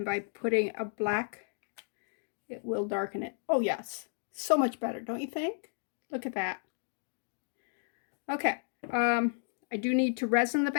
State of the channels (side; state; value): right; silent; digital silence